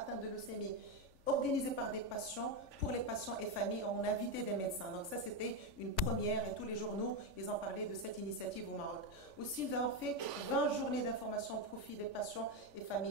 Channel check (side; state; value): left; late; 3.5 ms